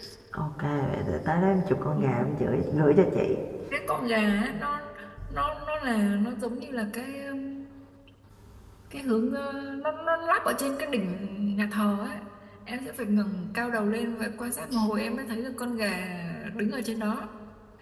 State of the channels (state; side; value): identical; both; correlation 1.00